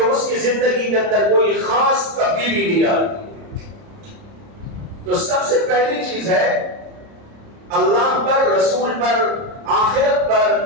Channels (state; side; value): late; left; 30 ms